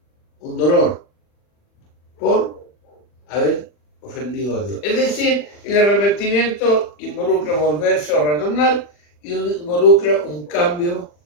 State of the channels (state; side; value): late; right; 40 ms